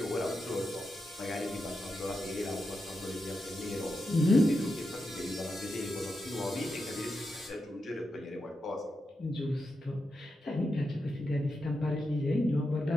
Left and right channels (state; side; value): normal; both; correlation 0.87